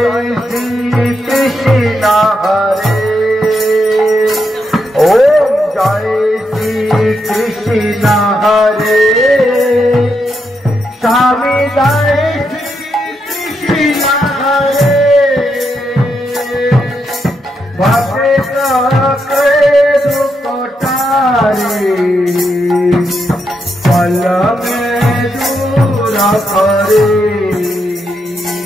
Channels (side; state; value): both; normal; correlation 0.82